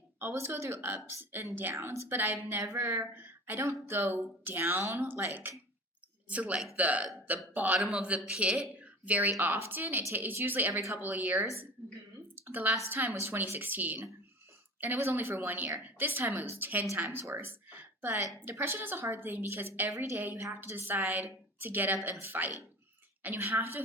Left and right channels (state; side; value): normal; both; correlation 0.36